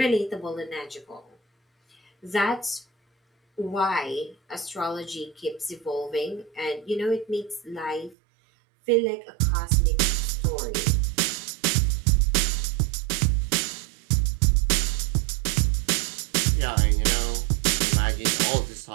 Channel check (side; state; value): left; drops out; at 8.2 s